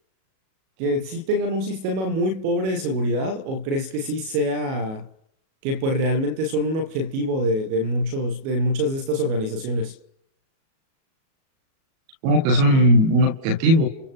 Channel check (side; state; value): left; late; 37 ms